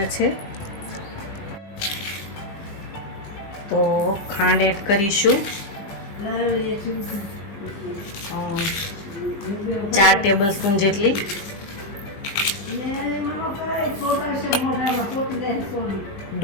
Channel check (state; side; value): late; right; 20 ms